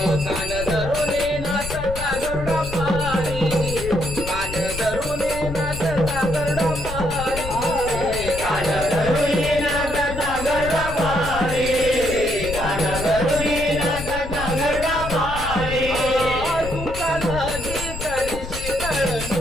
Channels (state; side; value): noise; left; rumble, 8 dB below the sound